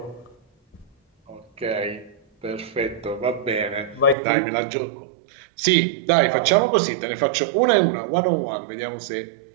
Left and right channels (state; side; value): drops out; left; at 4.2 s